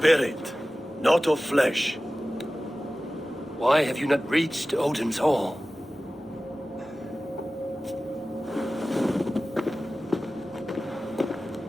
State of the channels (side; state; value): both; normal; correlation 0.96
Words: not of flesh. Why have you not reached Odin's Hall?